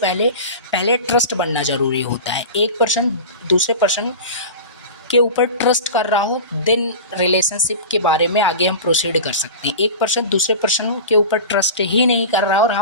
ट्रस्ट बनना ज़रूरी होता है। एक पर्सन दूसरे पर्सन के ऊपर ट्रस्ट कर रहा हो, देन रिलेशनशिप के बारे में आगे हम प्रोसीड कर सकते हैं। एक पर्सन दूसरे पर्सन के ऊपर ट्रस्ट ही नहीं कर रहा और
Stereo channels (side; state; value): both; inverted; correlation -0.31